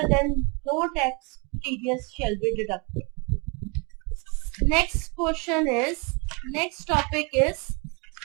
then no tax TDS shall be deducted. Next topic is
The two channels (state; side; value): quieter; left; 31.8 dB